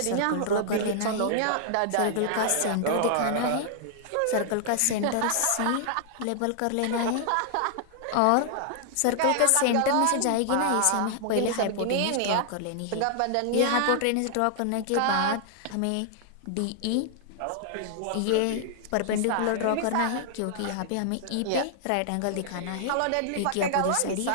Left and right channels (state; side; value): different; both; correlation -0.01